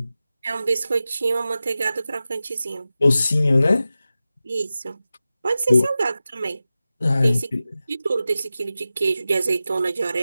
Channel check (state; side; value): inverted; both; correlation -0.94